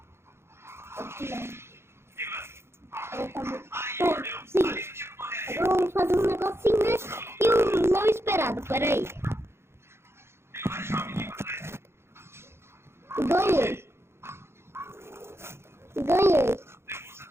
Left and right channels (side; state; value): left; late; 0.12 ms